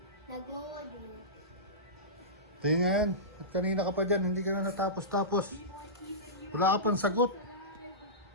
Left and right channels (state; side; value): normal; both; correlation -0.19